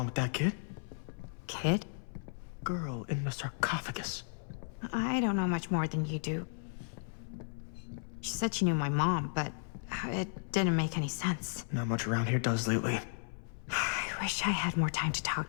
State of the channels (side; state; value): right; silent; 55 dB below the other